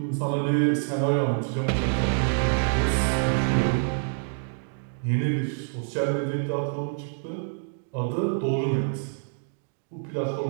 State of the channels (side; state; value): left; silent; digital silence